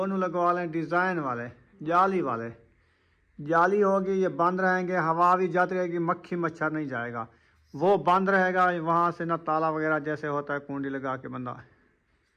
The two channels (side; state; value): both; identical; correlation 1.00